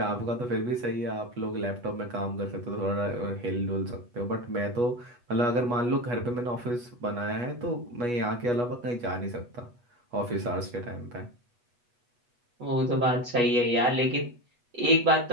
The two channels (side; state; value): left; late; 8.2 ms